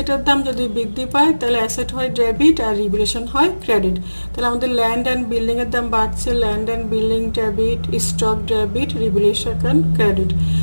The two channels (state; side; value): inverted; both; correlation -1.00